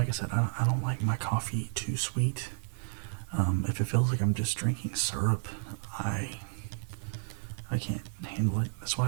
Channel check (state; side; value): silent; left; digital silence